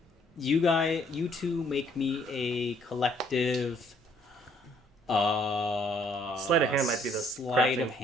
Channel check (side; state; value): both; normal; correlation 0.64